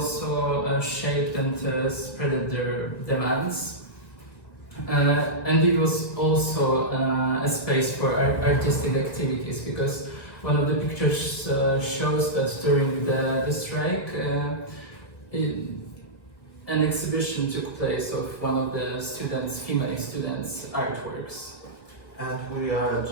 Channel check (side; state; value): right; late; 1.4 ms